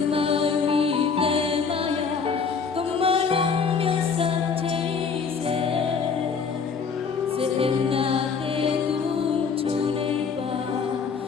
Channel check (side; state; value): right; quieter; 5.7 dB